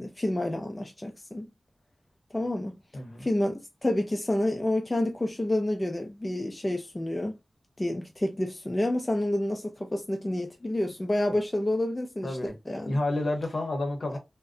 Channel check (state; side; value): normal; both; correlation 0.97